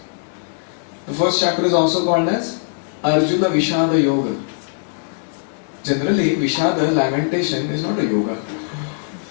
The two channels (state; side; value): silent; right; digital silence